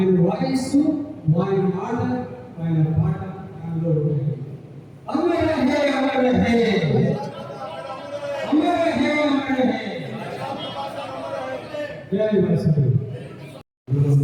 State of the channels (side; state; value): both; identical; correlation 1.00